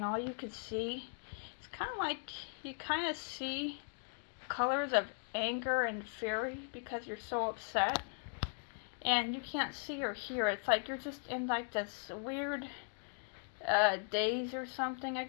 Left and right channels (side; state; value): right; silent; 52 dB below the other